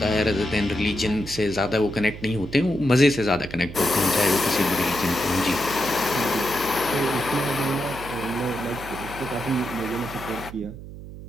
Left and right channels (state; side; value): noise; right; hum, 13 dB below the sound